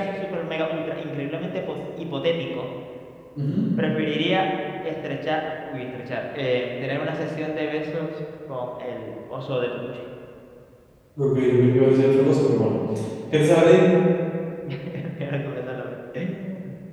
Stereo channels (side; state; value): both; identical; correlation 1.00